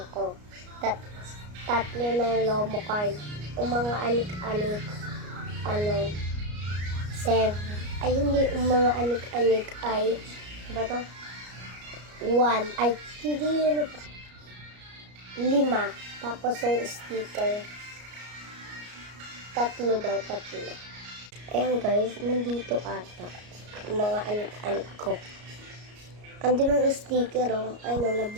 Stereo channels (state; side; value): late; left; 33 ms